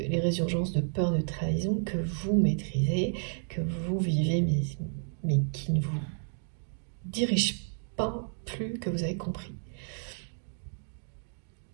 résurgences de peur de trahison que vous maîtrisez, que vous vivez, mais qui ne vous dirigent pas plus que vous avez compris.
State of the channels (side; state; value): left; silent; digital silence